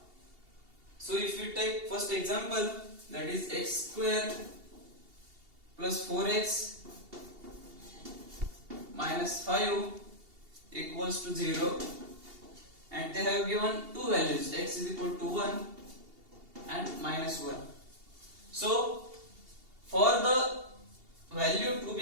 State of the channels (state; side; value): late; left; 2.8 ms